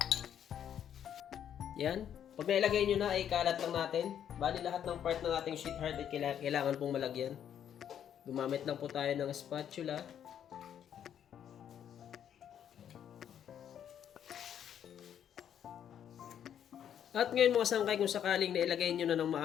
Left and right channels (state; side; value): quieter; right; 9.4 dB